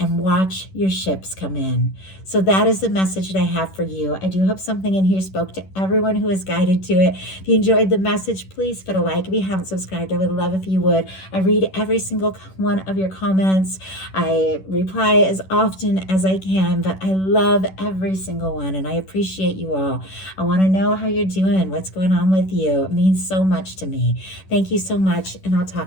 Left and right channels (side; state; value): right; late; 11 ms